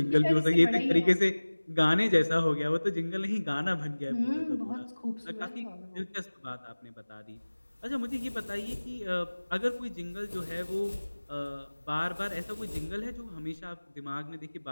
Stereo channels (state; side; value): inverted; both; correlation -1.00